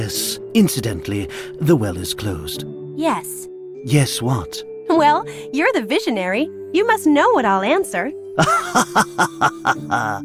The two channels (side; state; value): both; identical; correlation 1.00